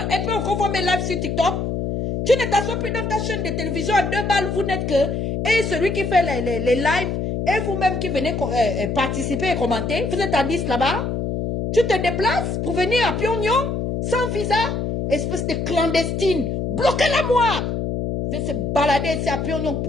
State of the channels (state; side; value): noise; left; hum, 2 dB below the sound